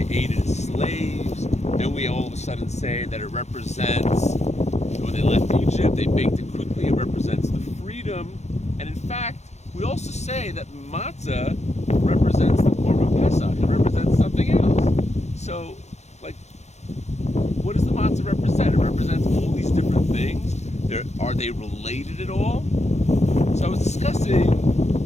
ate as slaves. Then we all of a sudden say that it represents when they left Egypt, they baked it quickly. It represents the freedom. And in fact, we also say that matzah represents the Korban Pessach. It represents something else. So, what does the matzah represent? It represents all these different things. Are they related at all? So I was discussing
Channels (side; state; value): right; late; 0.32 ms